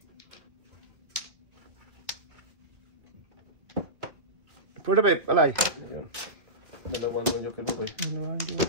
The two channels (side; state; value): left; late; 1.8 ms